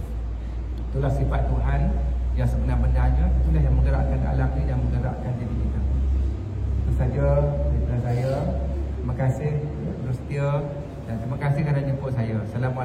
Itulah sifat Tuhan yang sebenar-benarnya. Itulah yang menggerakkan alam ni dan menggerakkan diri kita. Itu saja daripada saya. Terima kasih bersetia dan terima kasih kerana jemput saya.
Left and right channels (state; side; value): identical; both; correlation 1.00